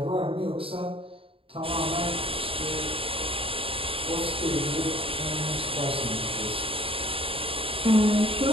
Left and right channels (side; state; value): left; late; 0.27 ms